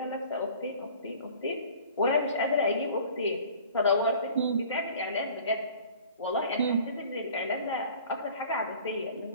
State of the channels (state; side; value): inverted; both; correlation -0.47